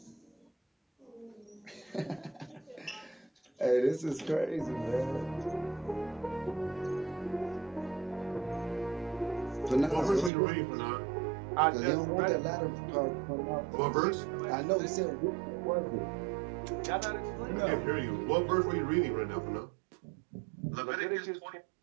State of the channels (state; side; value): drops out; left; at 10.3 s